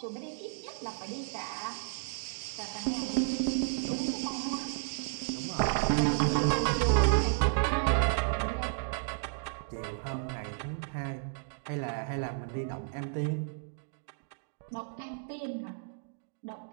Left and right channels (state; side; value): silent; left; digital silence